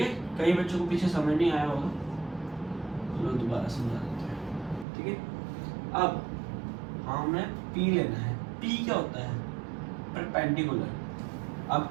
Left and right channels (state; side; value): drops out; left; at 4.9 s